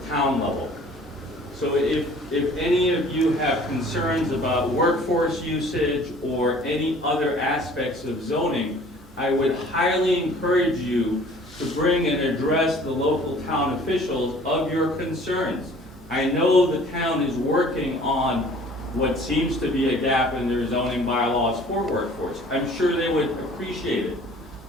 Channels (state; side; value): normal; both; correlation 0.51